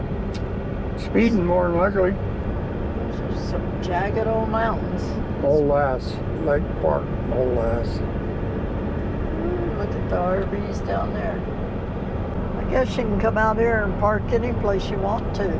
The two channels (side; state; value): both; identical; correlation 1.00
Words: Speeding more than likely. Those are some jagged old mountains. Old Lass, Lake Park, Old Lass. Look at the RVs down there. I guess you can come out here and park any place you want to.